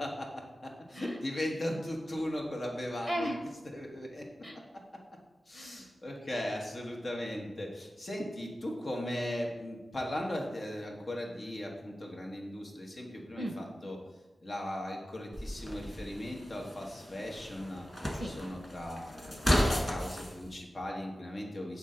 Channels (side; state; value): both; normal; correlation 0.94